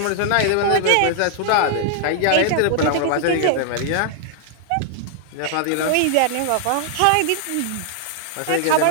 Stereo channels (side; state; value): both; different; correlation 0.00